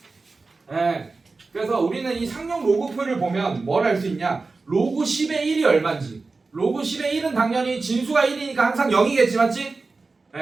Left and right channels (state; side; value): quieter; left; 3.9 dB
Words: 네. 그래서 우리는 이 상용 로그표를 보면 뭘 알 수 있냐? 로그 10의 1이 얼마인지. 로그 10의 1은 당연히 진수가 1이니까 항상 0이겠지 맞지?